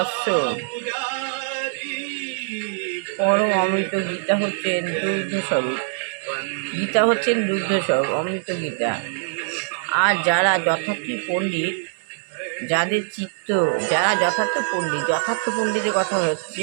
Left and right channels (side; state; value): left; silent; 63 dB below the other